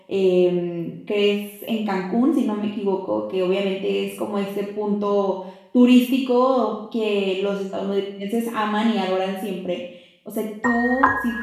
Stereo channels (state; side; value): identical; both; correlation 1.00